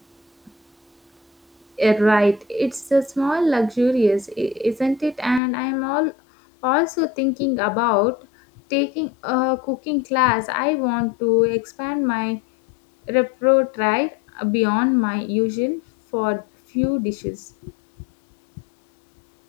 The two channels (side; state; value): right; drops out; at 5.4 s